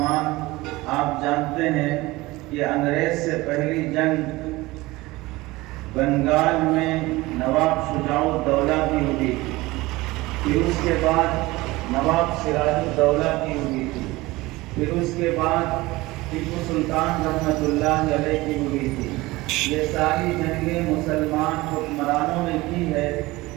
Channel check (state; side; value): quieter; left; 20.3 dB